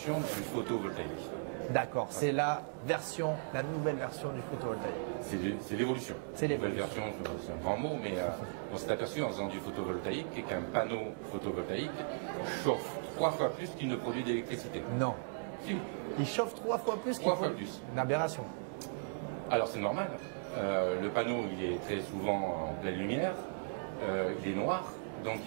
du photovoltaïque. D'accord, c'est la nouvelle version du photovoltaïque. C'est l'évolution. C'est Nouvelle l'évolution. version, c'est un grand mot, mais on s'est aperçu en faisant du photovoltaïque qu'un panneau photovoltaïque chauffe 3 fois plus qu'il ne produit d'électricité. Non. Si. Il chauffe 3 fois plus. 3 fois plus. Une aberration. Alors c'est normal. Le panneau, il est très souvent en pleine lumière, il est noir, donc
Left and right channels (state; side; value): silent; left; digital silence